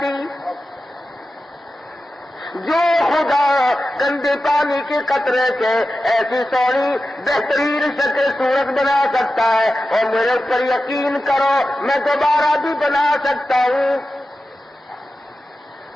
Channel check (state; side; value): normal; both; correlation 0.93